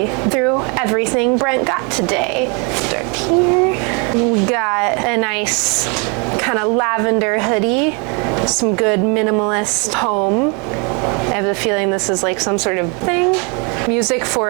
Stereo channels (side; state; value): left; quieter; 33.2 dB